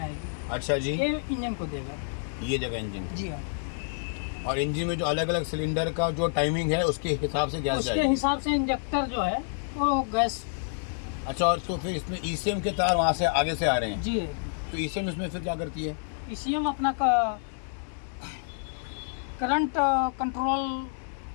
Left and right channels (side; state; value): right; silent; digital silence